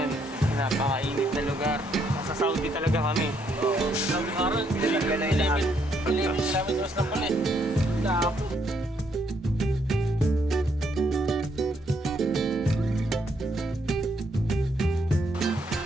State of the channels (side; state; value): both; normal; correlation 0.73